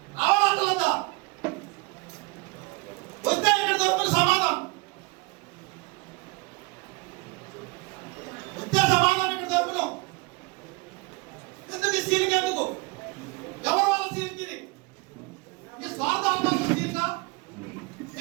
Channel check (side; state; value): left; quieter; 27.0 dB